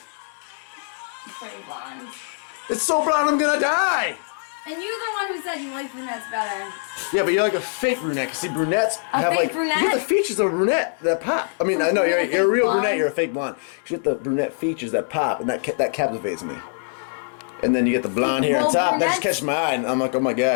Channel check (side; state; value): right; silent; digital silence